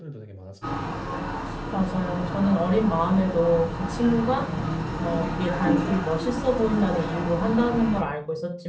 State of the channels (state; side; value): identical; both; correlation 1.00